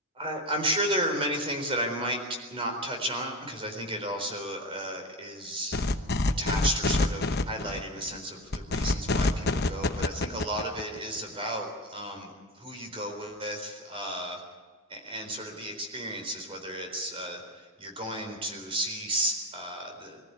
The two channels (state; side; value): normal; both; correlation 0.24